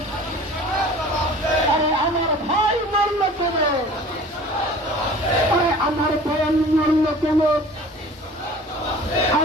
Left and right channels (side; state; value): both; normal; correlation 0.44